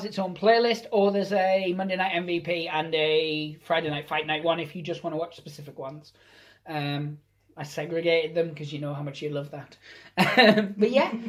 its own playlist, or there's a Monday Night MVP and a Friday Night Fight Night one if you just want to watch specific ones. I segregated them because you know how much you love that. But yeah,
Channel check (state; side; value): identical; both; correlation 1.00